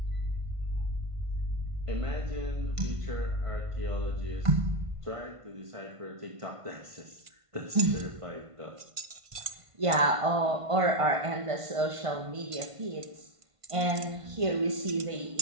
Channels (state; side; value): late; left; 1.5 ms